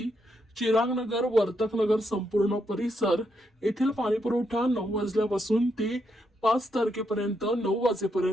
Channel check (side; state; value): both; normal; correlation 0.80